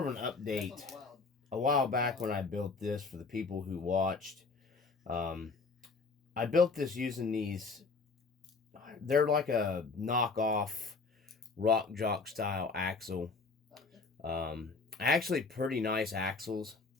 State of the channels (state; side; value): quieter; right; 4.2 dB